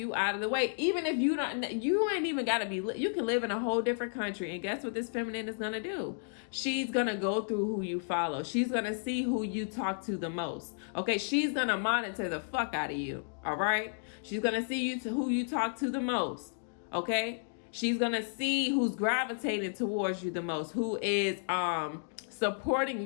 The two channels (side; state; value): right; silent; digital silence